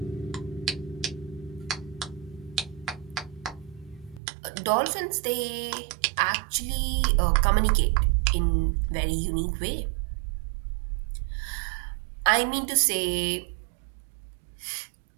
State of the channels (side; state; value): left; drops out; at 4.2 s